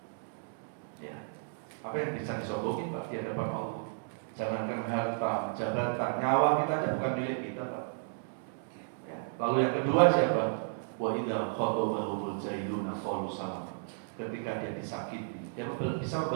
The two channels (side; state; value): left; silent; digital silence